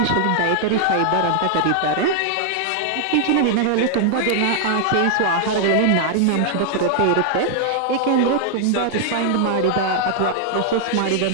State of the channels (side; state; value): both; different; correlation 0.00